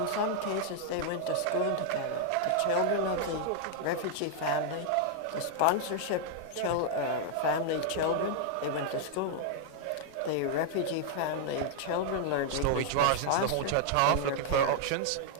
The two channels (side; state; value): both; different; correlation -0.01